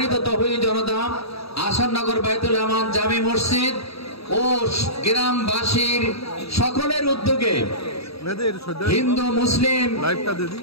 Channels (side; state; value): right; late; 0.77 ms